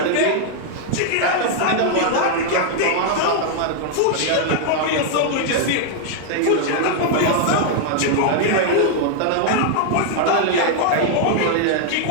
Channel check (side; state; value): both; different; correlation 0.00